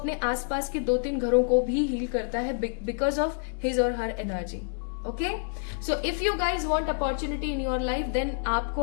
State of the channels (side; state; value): right; silent; digital silence